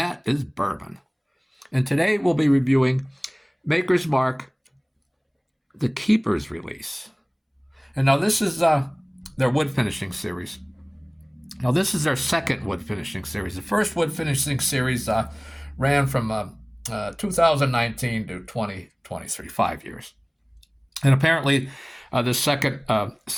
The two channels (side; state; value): both; identical; correlation 1.00